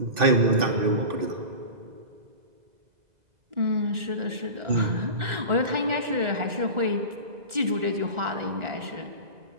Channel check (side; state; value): left; late; 1.4 ms